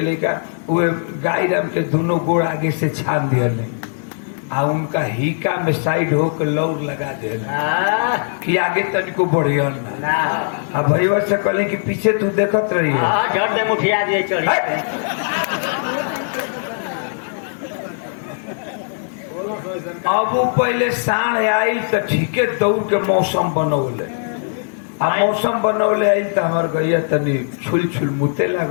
उहे गाय राम के दोनों गोड़ आगे से छान दिए आ उनका हिका में साइड होकर लौर लगा दे कि आगे तनिको बढ़िया ना आ भैया से कहली कि पीछे तू देखत रही अब वो पहले साढ़ आई तो ठीके दौड़ के मौसम बनौले आ मौसम बनौले आई तो हमार गैया तनी छुल छुल मुते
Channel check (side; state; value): right; silent; digital silence